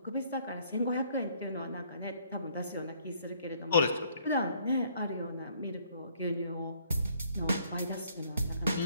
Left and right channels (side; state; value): both; inverted; correlation -0.64